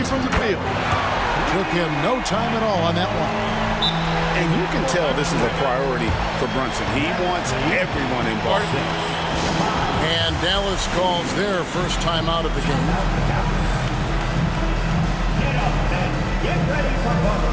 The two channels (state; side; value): identical; both; correlation 1.00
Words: from the field. Took him no time at all on that one. And you can tell this is a priority for Brunson. He wants everyone involved. And Dallas calls their first time out of the game. Get up and get ready for